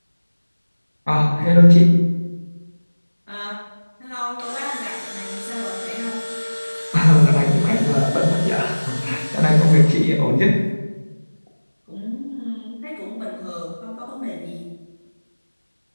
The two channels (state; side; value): inverted; both; correlation -1.00